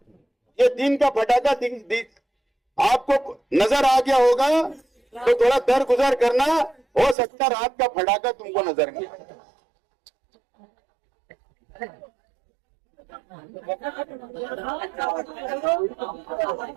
ये दिन का फटाका आपको नजर आ गया होगा तो थोड़ा दरगुजर करना, हो सकता रात का फटाका तुमको नजर नहीं आए।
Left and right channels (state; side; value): drops out; left; at 7.2 s